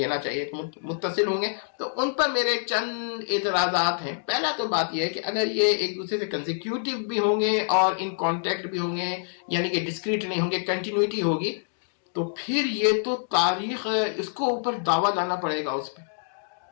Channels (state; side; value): silent; right; digital silence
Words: چاہیے, متصل ہوں گے. تو ان پر میرے چند اعتراضات ہیں. پہلا تو بات یہ ہے کہ اگر یہ ایک دوسرے سے کنزیکیوٹیو بھی ہوں گے اور ان کانٹیکٹ بھی ہوں گے, یعنی کہ ڈسکریٹ نہیں ہوں گے, کنٹینیوٹی ہوگی, تو پھر یہ تو تاریخ اس کو اوپر دعویٰ لانا پڑے گا اس پہ.